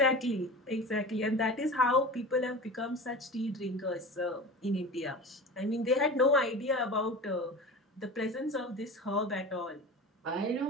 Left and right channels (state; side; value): normal; both; correlation 0.33